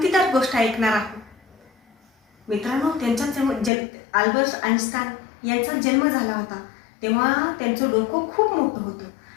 गोष्ट ऐकणार आहोत. मित्रांनो, अल्बर्ट आइन्स्टाईन यांचा जन्म झाला होता तेव्हा त्यांचं डोकं खूप मोठं होतं.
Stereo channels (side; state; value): right; drops out; at 3.7 s